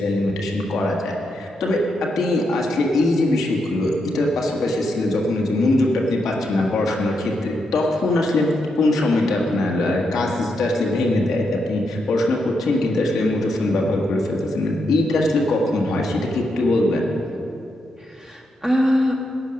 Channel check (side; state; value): both; normal; correlation 0.82